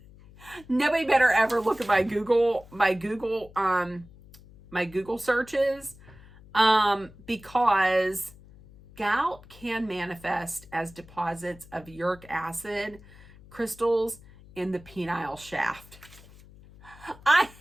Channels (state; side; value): noise; left; hum, 22 dB below the sound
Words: Nobody better ever look at my Google searches, because gout can manifest as deposits of uric acid crystals in the penile shaft. I